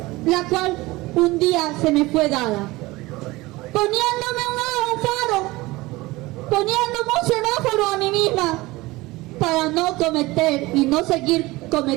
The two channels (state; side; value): quieter; left; 20.5 dB